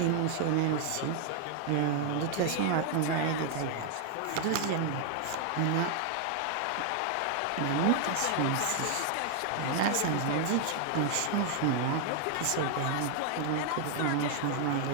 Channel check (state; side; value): different; both; correlation 0.00